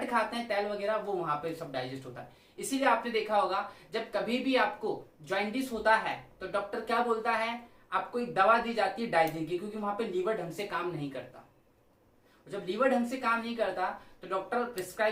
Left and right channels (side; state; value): both; identical; correlation 1.00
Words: खाते हैं तेल वगैरह, वो वहां पे सब डाइजेस्ट होता है। इसीलिए आपने देखा होगा जब कभी भी आपको जॉइंटिस होता है तो डॉक्टर क्या बोलता है? आपको एक दवा दी जाती है डाइजिन की, क्योंकि वहां पे लीवर ढंग से काम नहीं करता। जब लीवर ढंग से काम नहीं करता तो doctor